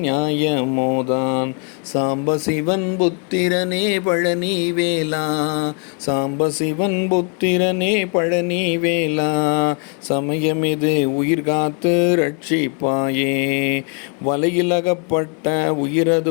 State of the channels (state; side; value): quieter; right; 38.2 dB